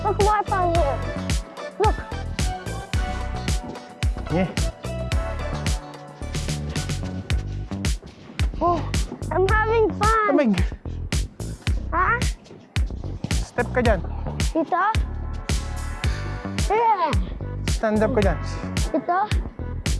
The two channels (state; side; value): identical; both; correlation 1.00